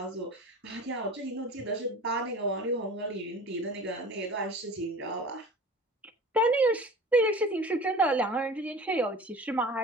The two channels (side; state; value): both; normal; correlation 0.39